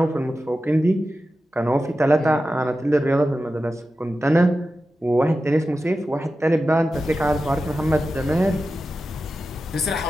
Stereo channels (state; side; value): normal; both; correlation 0.92